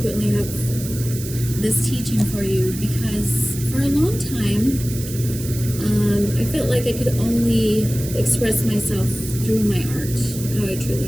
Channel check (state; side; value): noise; right; hiss, 11 dB below the sound